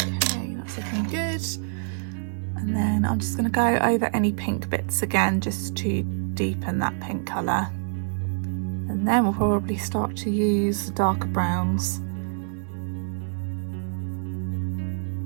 Okay, that's looking good. And then I'm just going to go over any pink bits again just to deepen that pink colour. And then we'll probably start to use the darker browns.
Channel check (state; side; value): silent; left; 61 dB below the other